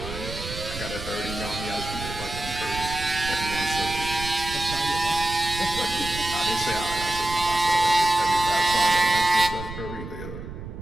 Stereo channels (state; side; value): noise; right; rumble, 10 dB below the sound